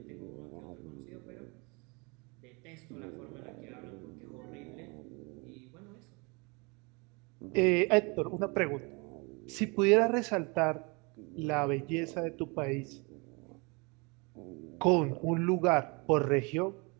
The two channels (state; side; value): quieter; left; 29.4 dB